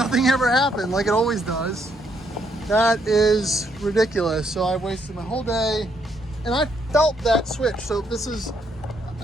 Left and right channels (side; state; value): both; normal; correlation 0.73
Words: ever happened, like it always does. That is ridiculous. So I wasted my whole day, and I felt that switch. So this is,